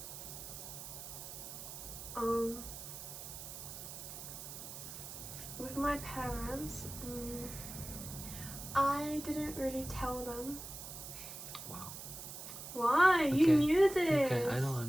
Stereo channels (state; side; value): noise; right; hiss, 10 dB below the sound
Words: With my parents, I didn't really tell them. Wow. Why? You Okay. knew this. Okay, I